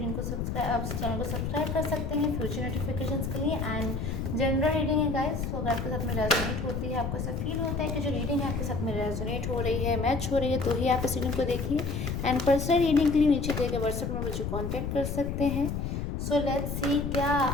को आप इस चैनल को सब्सक्राइब कर सकते हैं फ्यूचर नोटिफिकेशंस के लिए। एंड जनरल रीडिंग है गाइस, तो अगर आपके साथ में रेजोनेट होती है, आपको ऐसा फील होता है कि जो रीडिंग है आपके साथ में रेजोनेट हो रही है, मैच हो रही है, तो ही आप इस रीडिंग को देखिए। एंड पर्सनल रीडिंग के लिए नीचे दिए गए व्हाट्सएप में मुझे कॉन्टैक्ट कर सकते हैं। सो लेट्स सी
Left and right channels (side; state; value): left; noise; rumble, 3 dB below the sound